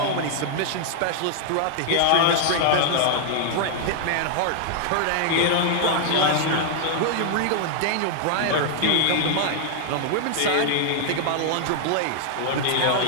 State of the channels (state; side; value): different; both; correlation -0.01